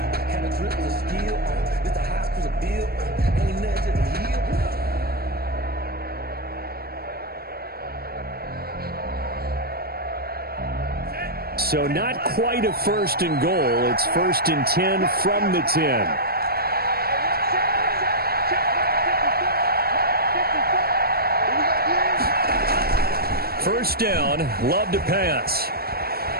So not quite a 1st and goal. It's 1st and 10 from the 10. First down, Love to pass.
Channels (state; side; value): late; left; 0.45 ms